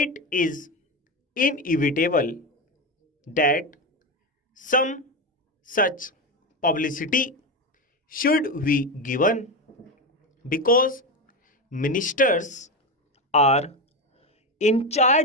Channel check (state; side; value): normal; both; correlation 0.16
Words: is inevitable that some such publicity should be given because ministers are in